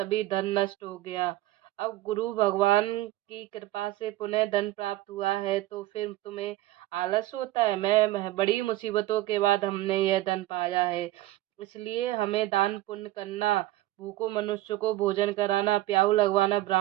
धन नष्ट हो गया। अब गुरु भगवान की कृपा से पुनः धन प्राप्त हुआ है तो फिर तुम्हें आलस होता है। मैं बड़ी मुसीबतों के बाद हमने यह धन पाया है, इसलिए हमें दान पुण्य करना, भूखों मनुष्य को भोजन कराना, प्याऊ लगवाना,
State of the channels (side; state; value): left; quieter; 16.2 dB